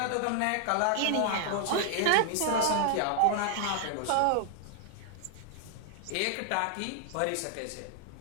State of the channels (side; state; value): both; different; correlation 0.00